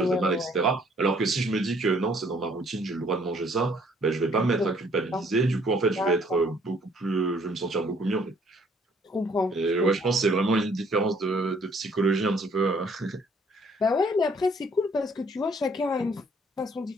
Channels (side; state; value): both; normal; correlation 0.62